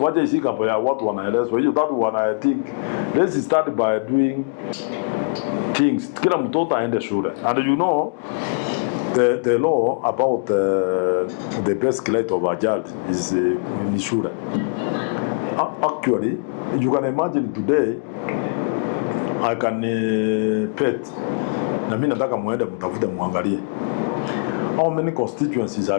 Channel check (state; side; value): quieter; right; 36.4 dB